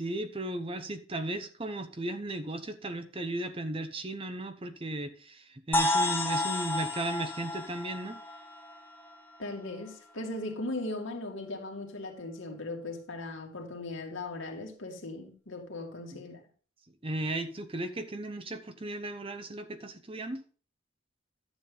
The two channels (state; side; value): normal; both; correlation 0.45